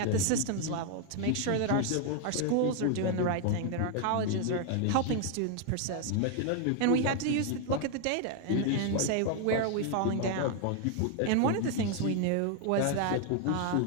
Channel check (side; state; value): both; different; correlation 0.00